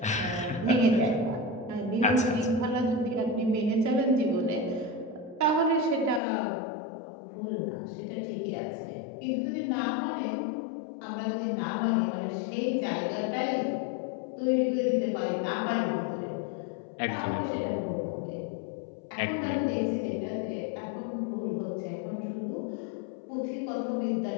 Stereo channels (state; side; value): drops out; right; at 6.2 s